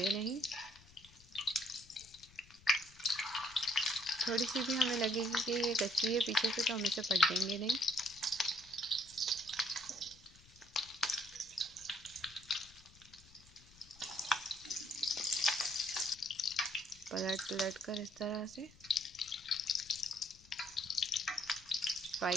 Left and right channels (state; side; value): noise; left; rumble, 24 dB below the sound